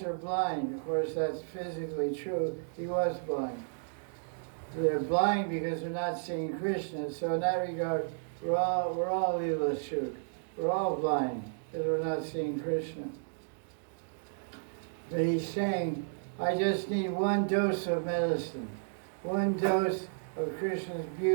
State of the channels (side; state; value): left; silent; digital silence